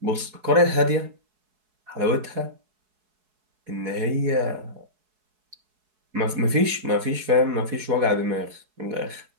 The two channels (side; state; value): left; late; 4.7 ms